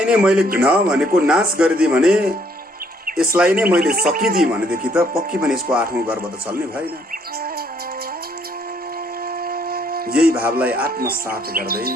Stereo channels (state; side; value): normal; both; correlation 0.67